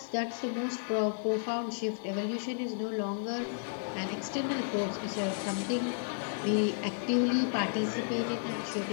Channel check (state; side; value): silent; right; digital silence